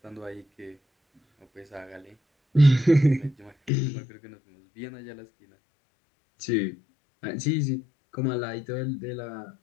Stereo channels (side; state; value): right; drops out; at 3.7 s